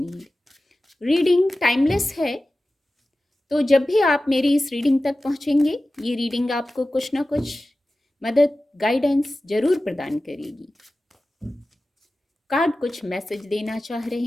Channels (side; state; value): both; normal; correlation 0.95